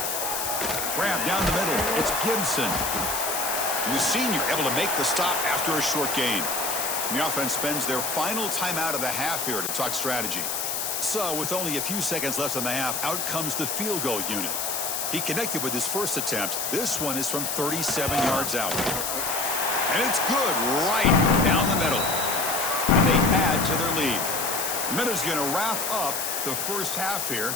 Grab down the middle. It's Gibson. And the senior able to make the stop after a short gain. And the offense spends their final timeout of the half here to talk strategy. So with only a few seconds left in the half, out comes the field goal unit. He connected with his first attempt. This one is from 37 yards out. And it's good right down the middle. And they add to their lead. The Minutes going to wrap up the first half here.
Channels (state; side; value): noise; left; hiss, 2 dB below the sound